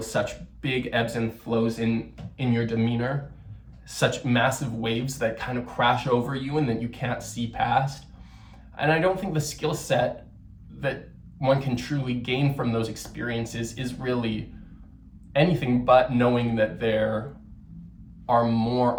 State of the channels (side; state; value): both; identical; correlation 1.00